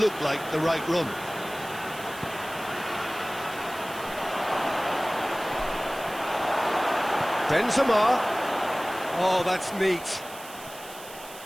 like the right run. Benzema. Oh, that's neat.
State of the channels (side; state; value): right; noise; hiss, 16 dB below the sound